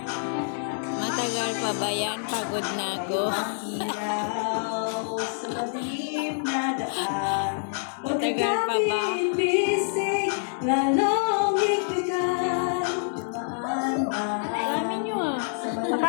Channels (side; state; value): right; silent; digital silence